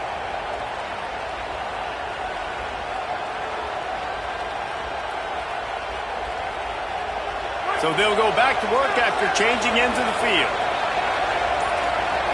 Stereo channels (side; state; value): both; identical; correlation 1.00